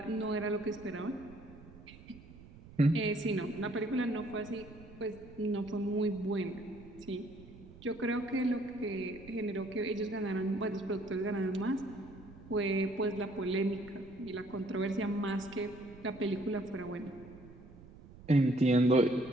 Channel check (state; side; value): noise; right; rumble, 19 dB below the sound